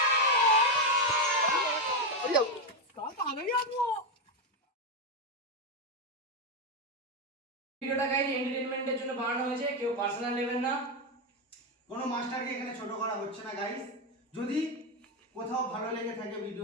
ভিডিওটা গাইজ এন্টারটেইনমেন্টের জন্য বানানো হয়েছে, কেউ পার্সোনাল নেবেন না। কোনো মাস্টারকে এখানে ছোট করা হচ্ছে না গাইস। যদি কোথাও ভালো লেগে থাকে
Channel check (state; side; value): normal; both; correlation 0.07